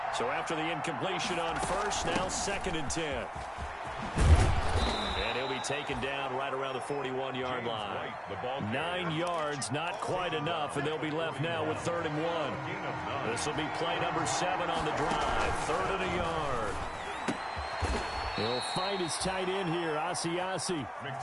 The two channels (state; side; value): identical; both; correlation 1.00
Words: So after the incompletion on 1st, now 2nd and 10. And he'll be taken down right around the 41-yard line. 9 yards, not quite enough, and they'll be left now with 3rd and 1. This will be play number 7 on the drive. 3rd and a yard. He'll find his tight end here, Asiasi.